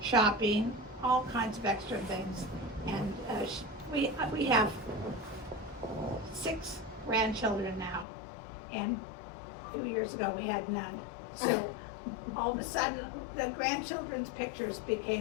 shopping, all kinds of extra things. And we have 6 grandchildren now, and 2 years ago we had none. So all of a sudden, the grandchildren's pictures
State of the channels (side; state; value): right; drops out; at 8.1 s